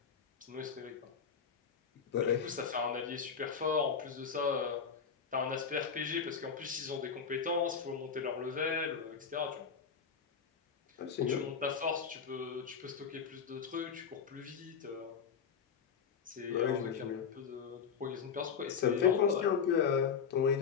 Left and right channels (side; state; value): right; quieter; 6.4 dB